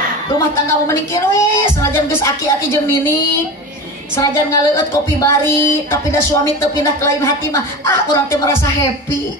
rumah tangga mau menikir we, senajan geus aki-aki jeung nini, senajan ngaleueut kopi bari, tapi da suami teu pindah ke lain hati mah, urang teh merasa happy.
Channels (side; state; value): both; normal; correlation 0.28